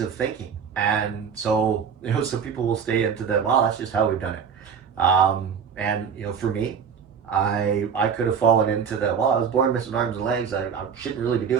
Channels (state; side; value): quieter; left; 6.9 dB